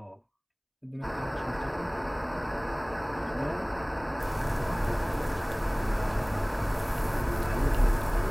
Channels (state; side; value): identical; both; correlation 1.00